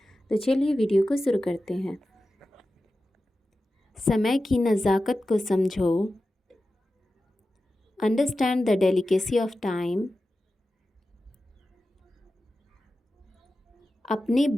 तो चलिए वीडियो को शुरू करते हैं। समय की नज़ाकत को समझो, understand the delicacy of time. अपने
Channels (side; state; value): both; normal; correlation 0.93